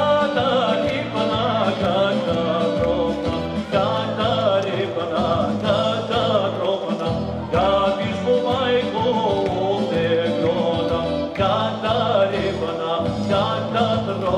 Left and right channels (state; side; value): identical; both; correlation 1.00